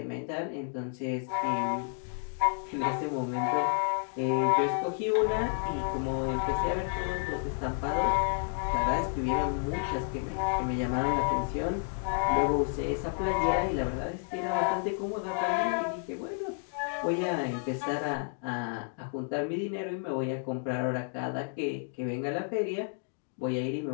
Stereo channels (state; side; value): silent; right; 57 dB below the other